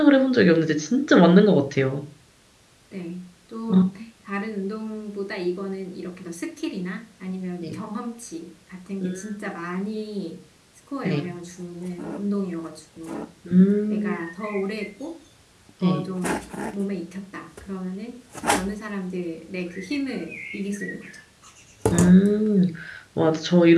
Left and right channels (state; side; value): identical; both; correlation 1.00